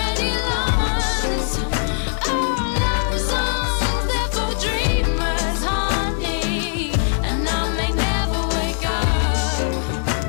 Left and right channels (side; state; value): right; silent; digital silence